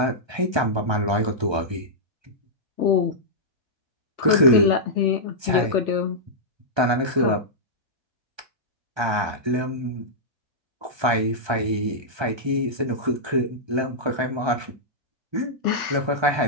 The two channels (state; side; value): late; left; 1.3 ms